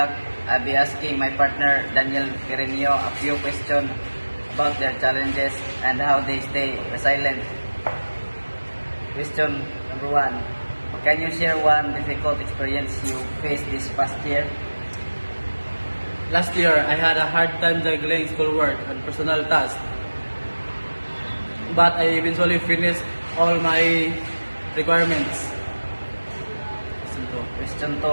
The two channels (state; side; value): inverted; both; correlation -1.00